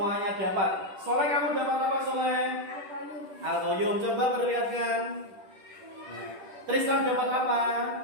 dapat. Soleh, kamu dapat apa Soleh? Al-Qayyum. Coba perlihatkan. Tristan dapat apa?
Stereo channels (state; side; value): late; left; 10 ms